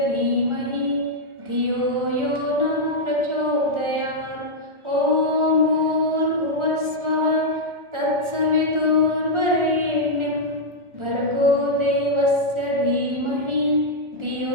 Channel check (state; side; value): late; left; 1.4 ms